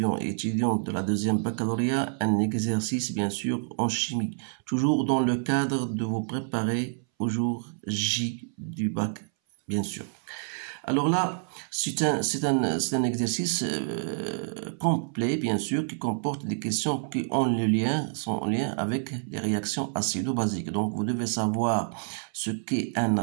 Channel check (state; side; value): silent; left; 59 dB below the other